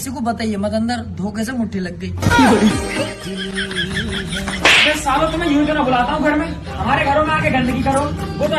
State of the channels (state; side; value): identical; both; correlation 1.00